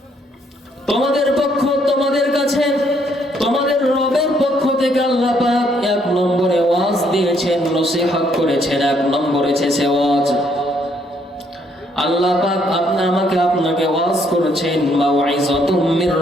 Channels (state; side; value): normal; both; correlation 0.69